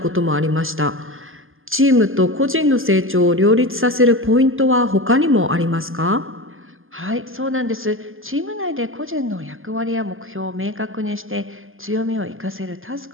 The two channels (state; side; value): late; left; 0.59 ms